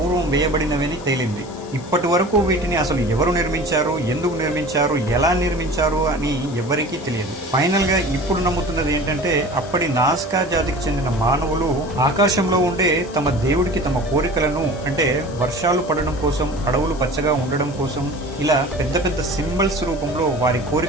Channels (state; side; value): noise; left; hiss, 21 dB below the sound